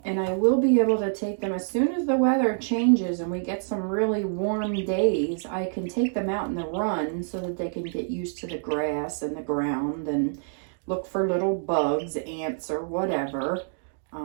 I will be able to take them as soon as the weather changes and we get some really warm days. I can take them out in the run so that they can get used to the grass and the ground and look for little bugs, ants, or whatever.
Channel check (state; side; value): silent; left; digital silence